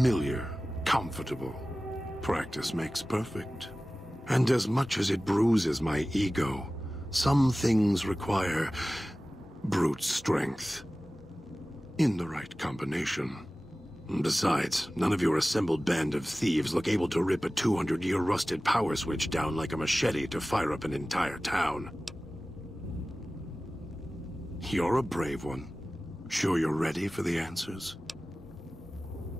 comfortable. Practice makes perfect. And as much as it bruises my ego, some things require brute strength. In the right combination. Besides, none of your assembled band of thieves look able to rip a 200-year rusted power switch down like a machete to fire up an entire town. You're a brave one. Sure you're ready for the answers?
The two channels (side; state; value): both; normal; correlation 0.97